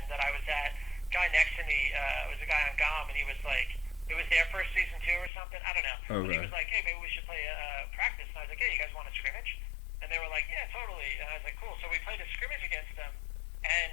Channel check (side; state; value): right; drops out; at 5.3 s